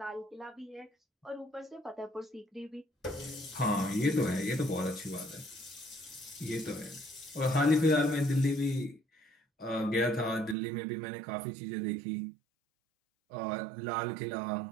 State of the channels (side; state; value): left; drops out; at 10.6 s